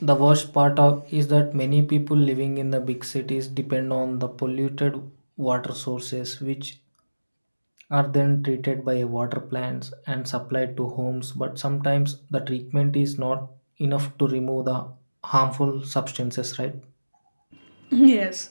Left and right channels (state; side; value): inverted; both; correlation -1.00